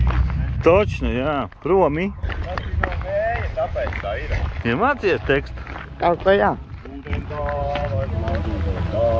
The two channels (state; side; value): identical; both; correlation 1.00